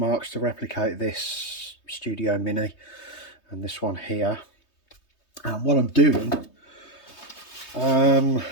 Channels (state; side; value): late; right; 3.2 ms